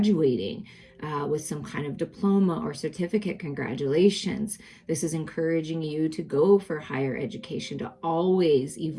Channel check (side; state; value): both; identical; correlation 1.00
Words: with some kind of diploma or certificate. Congratulations. This is encouraging you to go for higher education, to always